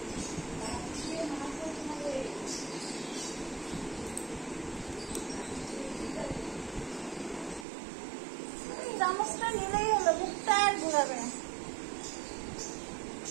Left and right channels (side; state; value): left; drops out; at 7.7 s